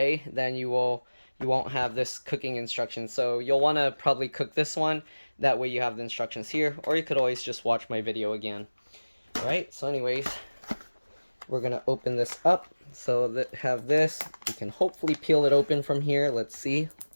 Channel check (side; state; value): both; inverted; correlation -1.00